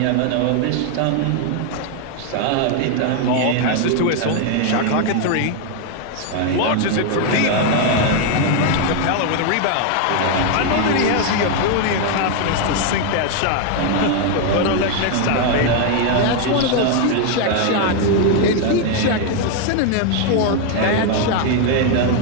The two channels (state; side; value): different; both; correlation 0.01